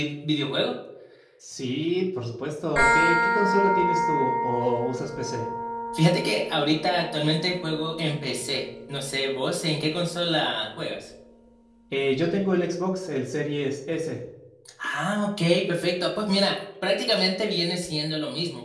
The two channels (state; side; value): identical; both; correlation 1.00